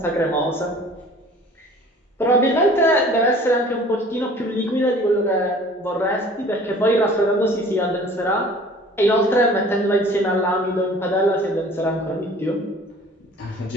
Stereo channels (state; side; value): normal; both; correlation 0.48